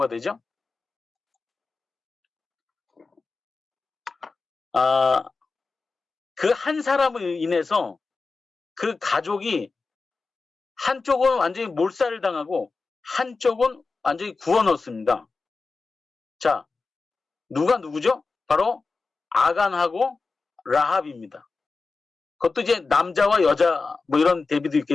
되죠? 그 한 사람을 인해서 그 가족이 한쪽은 완전히 몰살을 당하고 한쪽은 완전히 구워 넣었습니다. 자, 누구죠? 바로 아간하고 라합입니다. 그것도 이제 남자와 여자 뭐 이런 대비도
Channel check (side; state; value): right; quieter; 4.1 dB